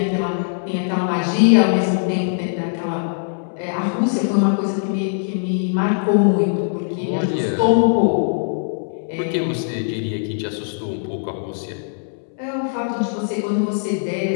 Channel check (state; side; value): silent; right; 65 dB below the other